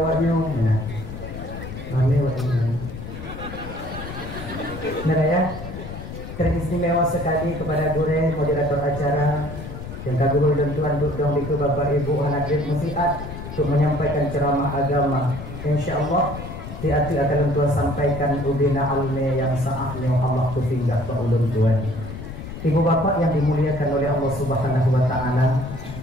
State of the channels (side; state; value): left; noise; rumble, 10 dB below the sound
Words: kami waktu ya, teristimewa sekali kepada Gure moderator acara yang kagum dan tuan untuk dong itu Bapak Ibu hadirin musiat untuk menyampaikan ceramah agama. Insyaallah hati akan tuan sampaikan ubina alme yang saatnya Allah tufinggah ke ulun tuan. Ibu bapak yang dimuliakan oleh Allah Subhanahu wa taala.